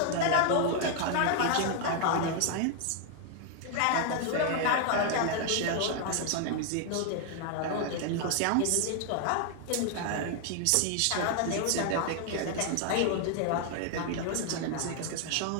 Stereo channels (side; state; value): both; different; correlation 0.00